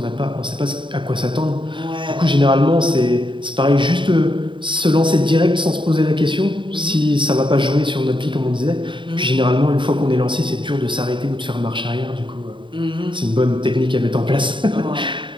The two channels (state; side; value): late; left; 0.24 ms